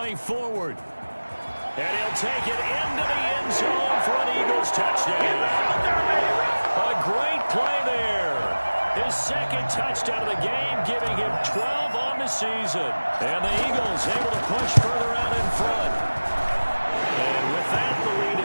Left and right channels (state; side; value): inverted; both; correlation -1.00